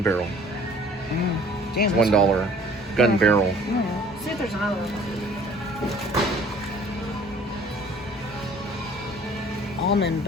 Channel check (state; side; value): normal; both; correlation 0.52